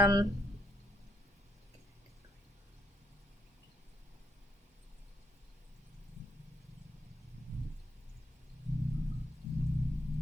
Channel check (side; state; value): both; normal; correlation 0.74